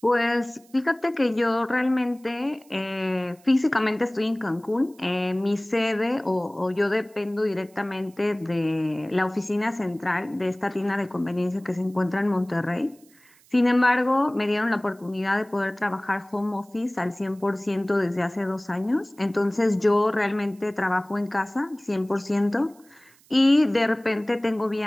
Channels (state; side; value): noise; right; hiss, 29 dB below the sound